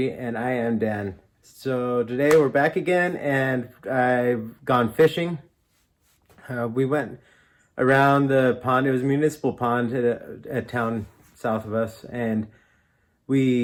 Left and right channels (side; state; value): both; identical; correlation 1.00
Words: and I am Dan. So today we're back again and I've gone fishing. We went around the pond. It was a municipal pond at a town south of us, and